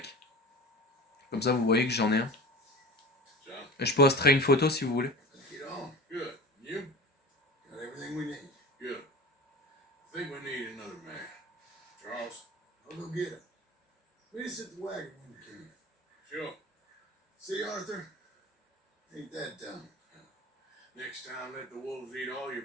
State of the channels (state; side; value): normal; both; correlation 0.34